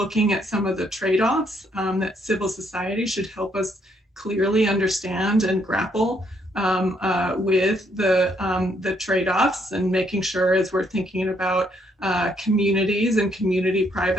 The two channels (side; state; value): both; normal; correlation 0.71